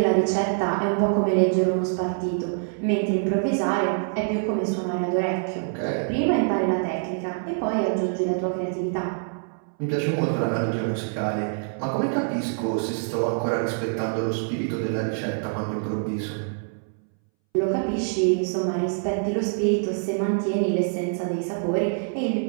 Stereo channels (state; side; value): silent; left; 62 dB below the other